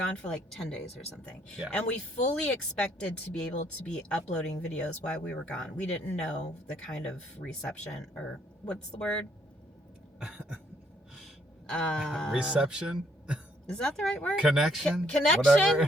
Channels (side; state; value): both; normal; correlation 0.69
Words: for like 10 days or something. Yeah. And we fully expected to be able to be uploading videos while we were gone. We didn't know the kind of reception, or what's the word? Reception? Is that the right word? Connection?